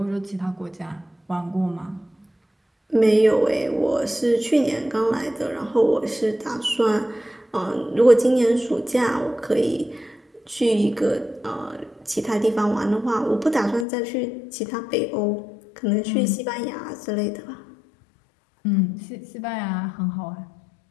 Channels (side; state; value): right; drops out; at 13.9 s